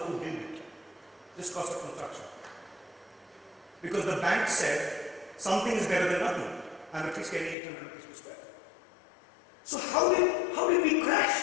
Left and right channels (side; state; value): right; drops out; at 7.6 s